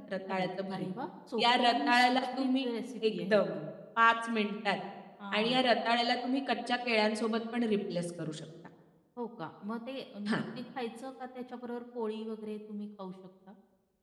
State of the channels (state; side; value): identical; both; correlation 1.00